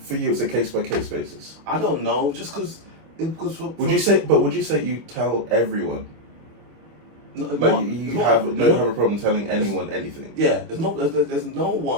for you it's a case by case basis. I don't know, just because. Would you say you tell everyone? No, like you don't have a problem telling anyone anything. Yeah, there's no one. There's no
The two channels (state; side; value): late; left; 25 ms